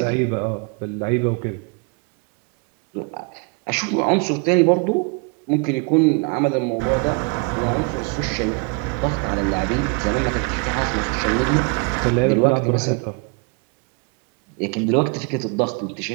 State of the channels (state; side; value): quieter; left; 33.4 dB